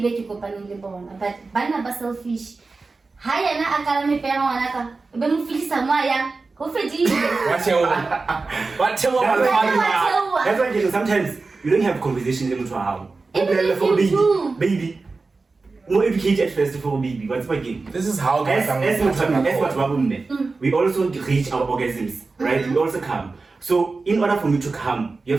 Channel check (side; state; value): left; quieter; 3.9 dB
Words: it to but banna ba selfish. Haya na akala me pera wanaka. Be mu filisa mwaya. What's your That's why sometimes you don't have conversations in the house. Even if you do. Baby. More educated first for baby. What's my game? This is how As we also reach our orgasms, right? We also come. So in order for me to come, you